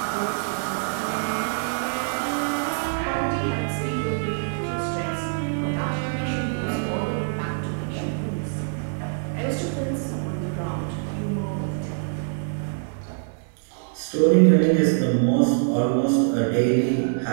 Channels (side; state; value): left; silent; digital silence